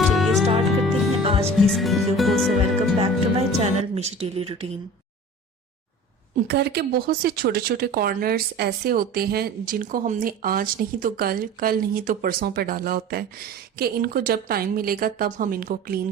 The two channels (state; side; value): normal; both; correlation 0.40